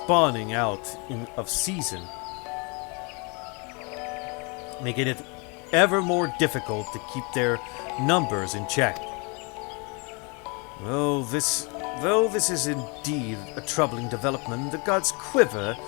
out of season, making it ever more difficult to keep their numbers in check. Though this is indeed a troubling development, the god's Quiver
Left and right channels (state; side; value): quieter; right; 31.9 dB